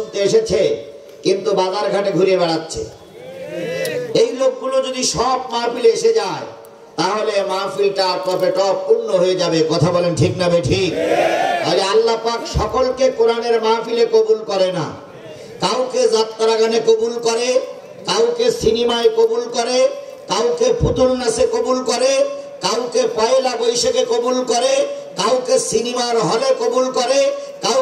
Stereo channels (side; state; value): both; identical; correlation 1.00